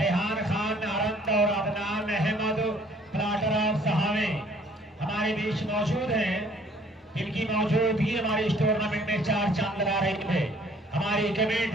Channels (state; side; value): normal; both; correlation 0.58